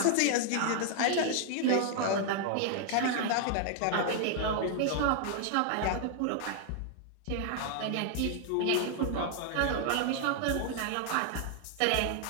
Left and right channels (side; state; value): both; different; correlation 0.00